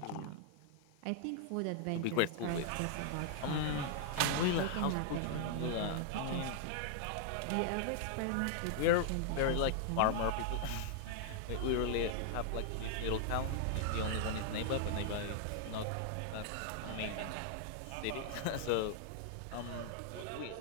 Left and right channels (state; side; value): different; both; correlation 0.00